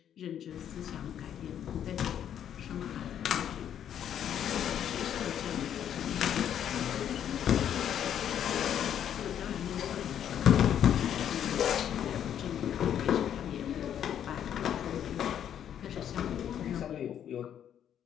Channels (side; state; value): right; quieter; 9.7 dB